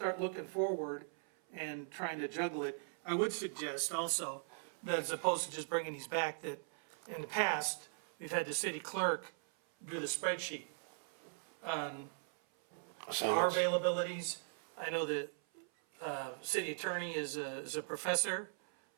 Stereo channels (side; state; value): left; silent; 51 dB below the other